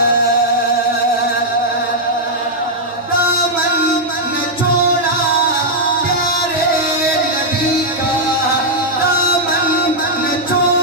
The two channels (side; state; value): both; normal; correlation -0.04